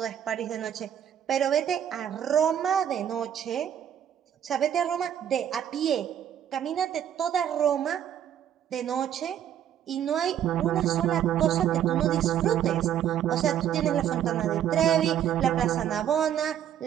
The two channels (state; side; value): quieter; left; 10.0 dB